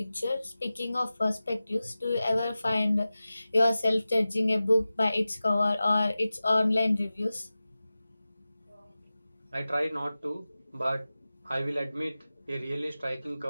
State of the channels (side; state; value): both; inverted; correlation -0.96